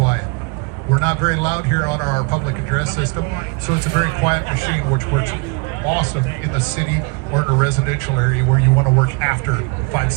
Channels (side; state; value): left; quieter; 31.7 dB